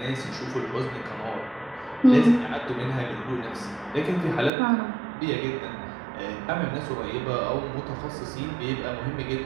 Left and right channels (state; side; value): drops out; left; at 4.5 s